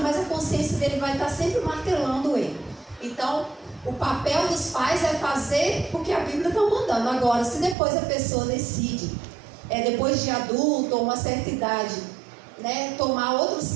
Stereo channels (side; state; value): left; drops out; at 7.8 s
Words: a consciência dele vai estar sempre martelando ele. Então, o papel dos pais é fazer o que a Bíblia está mandando. Agora, se depois a pessoa decide, depois de adulto ou uma certa idade, né, tomar outros